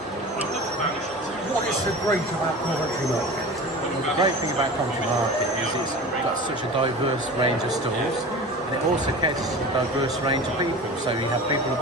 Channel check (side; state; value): both; normal; correlation 0.34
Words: what is so great about Coventry Market? The great thing about Coventry Market is it's got such a diverse range of stores, and it also caters to a diverse range of people. So you have people of